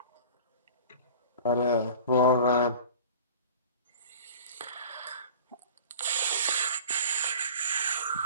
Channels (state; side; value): inverted; both; correlation -0.39